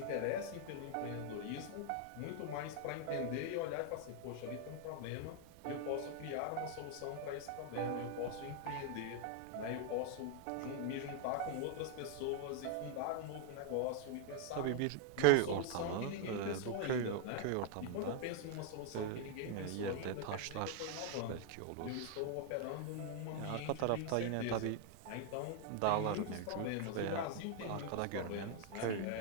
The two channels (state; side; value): different; both; correlation 0.00